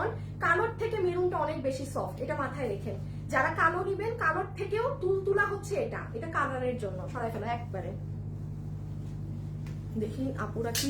কালোর থেকে মেরুনটা অনেক বেশি সফট, এটা মাথায় রেখেন। যারা কালো নিবেন, কালোর থেকেও তুলতুলা হচ্ছে এটা কালারের জন্য। সরাই ফেলো একবারে। দেখি আপুরা কি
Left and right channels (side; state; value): both; identical; correlation 1.00